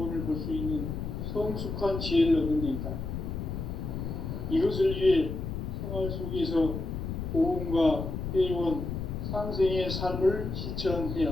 볼 수 있는 성숙한 지혜를 얻는 데 있다. 이것을 위해 생활 속에서 고음과 회원, 상생의 삶을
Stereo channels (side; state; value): left; noise; rumble, 4 dB below the sound